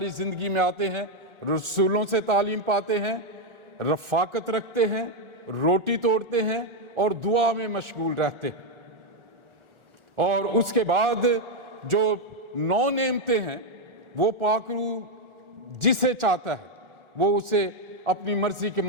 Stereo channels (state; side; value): late; left; 1.4 ms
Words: زندگی میں آتے ہیں. رسولوں سے تعلیم پاتے ہیں, رفاقت رکھتے ہیں, روٹی توڑتے ہیں اور دعا میں مشغول رہتے ہیں. اور اس کے بعد جو 9 نعمتیں ہیں وہ پاک روح جسے چاہتا ہے وہ اسے اپنی مرضی کے